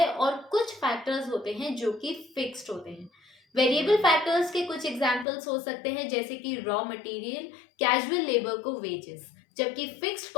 और कुछ फैक्टर्स होते हैं जो कि फिक्स्ड होते हैं। वेरिएबल फैक्टर्स के कुछ एग्जांपल्स हो सकते हैं जैसे कि रॉ मटेरियल, कैजुअल लेबर को वेजेस, जबकि फिक्स्ड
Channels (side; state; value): right; drops out; at 5.2 s